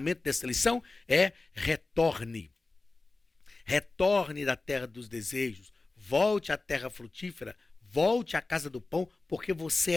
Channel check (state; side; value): quieter; right; 3.5 dB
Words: dessa lição, é retorne. Retorne da terra dos desejos, volte à terra frutífera, volte à casa do pão, porque você